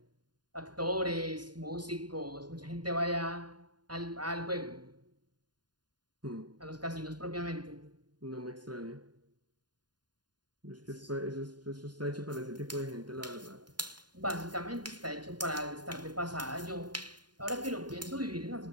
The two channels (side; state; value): left; late; 0.70 ms